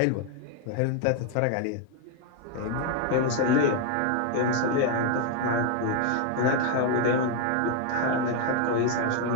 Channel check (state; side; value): different; both; correlation 0.01